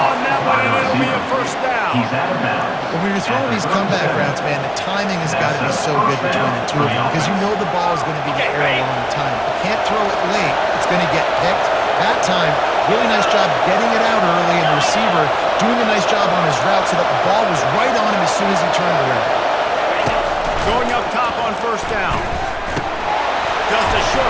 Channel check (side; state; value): both; identical; correlation 1.00